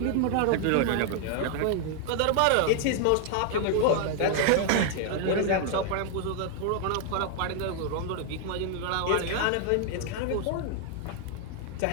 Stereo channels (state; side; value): different; both; correlation 0.00